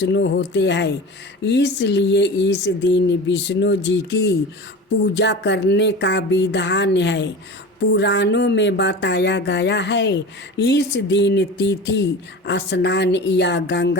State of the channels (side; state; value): both; normal; correlation 0.33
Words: होते हैं, इसलिए इस दिन विष्णु जी की पूजा करने का विधान है। पुराणों में बताया गया है इस दिन तिथि स्नान या